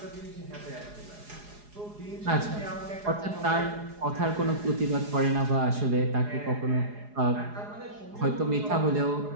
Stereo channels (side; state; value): left; late; 4.8 ms